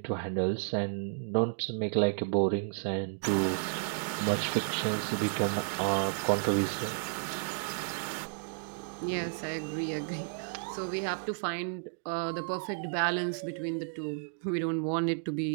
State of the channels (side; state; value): left; silent; digital silence